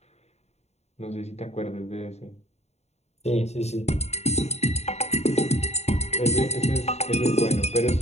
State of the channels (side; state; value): right; late; 0.31 ms